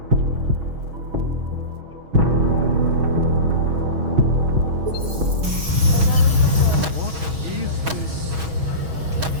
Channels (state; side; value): late; left; 6.2 ms